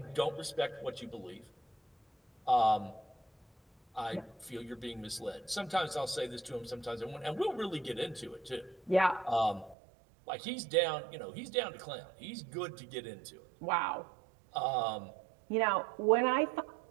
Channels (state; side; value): drops out; left; at 9.8 s